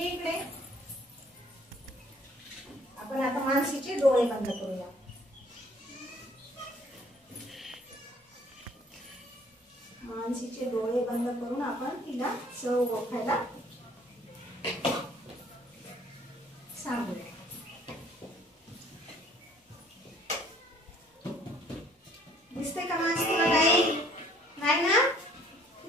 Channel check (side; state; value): both; normal; correlation 0.58